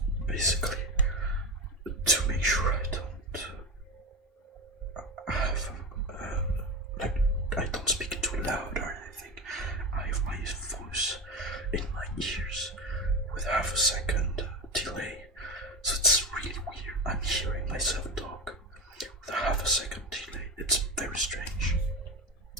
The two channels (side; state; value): both; normal; correlation 0.21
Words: basically, to make sure I don't have like I don't speak too loud or anything. I have my voice in my ears with half a second delay, so it's really weird. I'm hearing myself talk with a half a second delay. It's very strange.